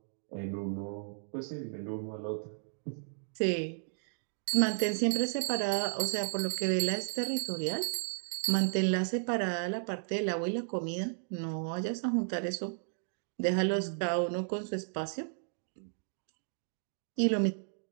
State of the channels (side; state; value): left; silent; digital silence